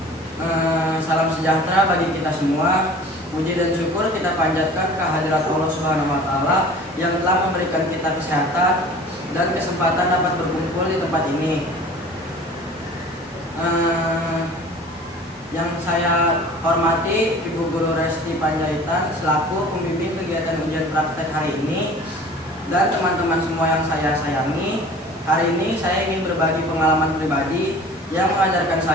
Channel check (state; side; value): normal; both; correlation 0.44